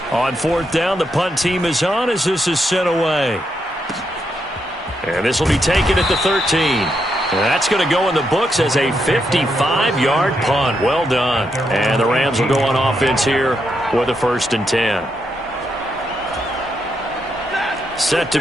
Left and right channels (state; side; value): normal; both; correlation 0.81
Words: On 4th down, the punt team is on as this is sent away. And this will be taken at the 13. And that's going to go in the books as a 55-yard punt. Well done. And the Rams will go on offense here with a 1st and 10. Set to